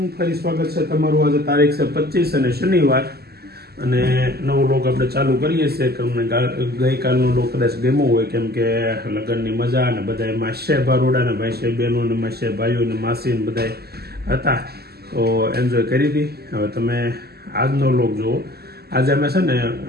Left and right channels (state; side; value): late; left; 0.46 ms